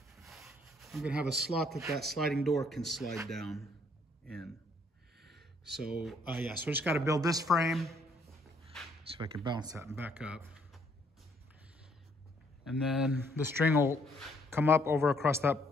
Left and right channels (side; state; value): both; normal; correlation 0.68